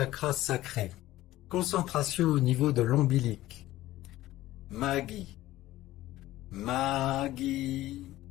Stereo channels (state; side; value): quieter; right; 15.8 dB